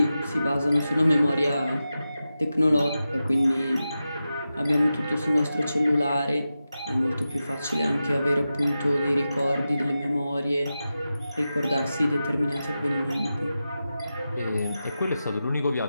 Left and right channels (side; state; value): both; inverted; correlation -0.92